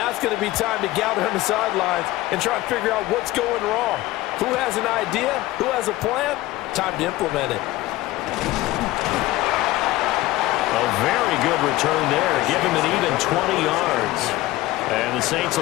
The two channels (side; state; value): right; quieter; 17.4 dB